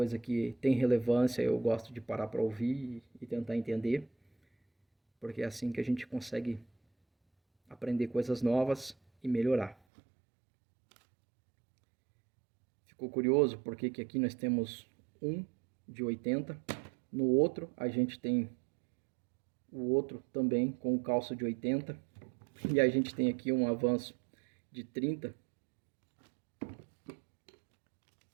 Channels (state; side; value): drops out; left; at 9.8 s